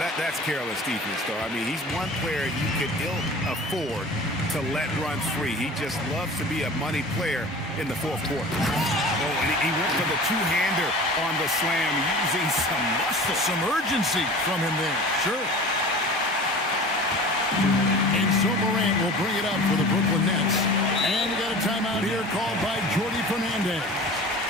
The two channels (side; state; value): both; normal; correlation 0.39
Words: that's careless defense, though. I mean, he's one player you could ill afford to let runs free. He just loves to be a money player in the fourth quarter. Oh, and he went for the two-hander on the slam, using some muscle. Some urgency from him there. Sure. And so Morant will bring it up for the Brooklyn Nets. And you got to timeout here called by Jordy Fernandez.